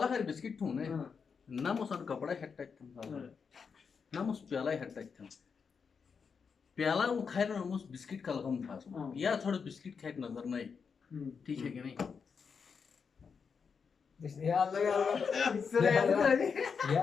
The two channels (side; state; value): right; quieter; 5.9 dB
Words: खैर बिस्किट थू ने ना मोसा कपड़ा हेट टच था ना मोस प्याला हेट टच था प्याला वो खाए ना मोस बिस्किट का लगम था या थोड़ा बिस्किट खाए नजर नहीं ठीक है कि नहीं